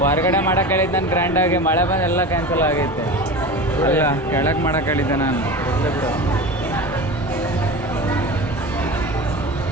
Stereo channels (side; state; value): both; normal; correlation 0.30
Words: ಹೊರಗಡೆ ಮಾಡಕ್ಕೆ ಹೇಳಿದ್ದೆ ನಾನು ಗ್ರ್ಯಾಂಡಾಗಿ, ಮಳೆ ಬಂದು ಎಲ್ಲ ಕ್ಯಾನ್ಸಲ್ ಆಗೈತೆ. ಅಲ್ಲ ಕೆಳಗೆ ಮಾಡಕ್ಕೆ ಹೇಳಿದ್ದೆ ನಾನು. ಇಲ್ಲ ಬಿಡು.